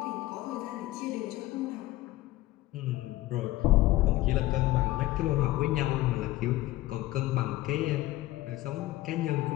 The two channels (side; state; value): right; quieter; 16.9 dB